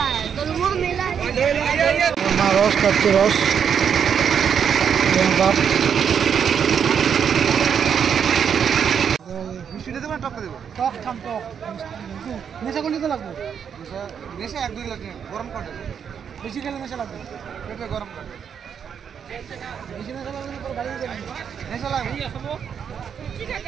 মা রস খাচ্ছে, রস বাপ মিষ্টি দেবো না টক দেবো? টক খাম, টক নেশা করলে তো লাগবে, নেশা 1-2 লাগে, গরম কাটে, বেশি খেলে নেশা লাগবে, পেটে গরম কাটে, বেশি নেশা লাগবে তো গাড়ি যাবে, নেশা লাগে।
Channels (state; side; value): quieter; left; 7.6 dB